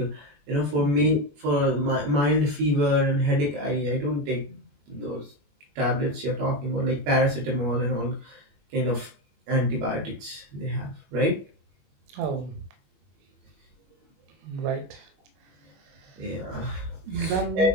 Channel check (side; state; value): left; late; 21 ms